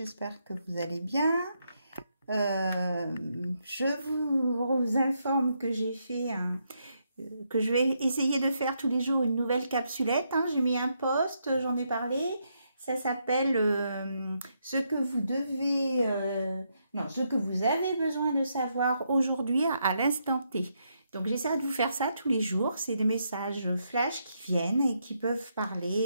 que vous allez bien. Je vous informe que que je vais essayer de faire tous les jours une nouvelle capsulette. J'ai mis un post, j'en ai parlé, ça s'appelle ce que vous devez, ce que vous avez besoin de savoir aujourd'hui à l'instant T. Donc, j'essaie de vous faire ça tous les jours. C'est des messages flash qui viennent et qui peuvent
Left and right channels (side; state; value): both; inverted; correlation -0.79